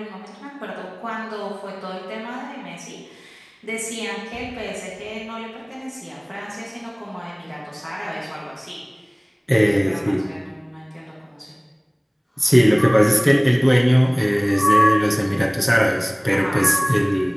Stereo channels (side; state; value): both; identical; correlation 1.00